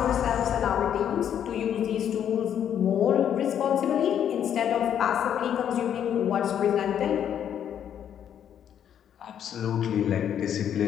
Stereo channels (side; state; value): right; quieter; 9.4 dB